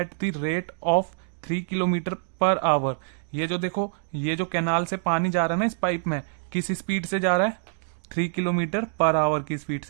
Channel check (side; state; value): left; silent; digital silence